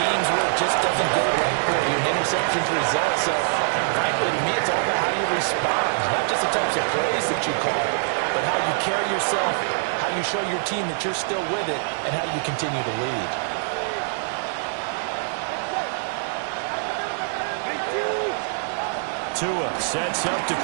where it just doesn't go right for you. An interception's the result. So, frankly, to me, it's all about how you respond. Not just the types of plays that you call, but how you carry yourself, how you show your team that you're still with it, and how you continue to lead. Tua sets up to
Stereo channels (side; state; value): left; silent; digital silence